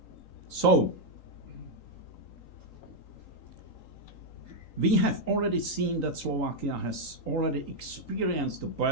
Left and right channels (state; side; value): late; right; 3.9 ms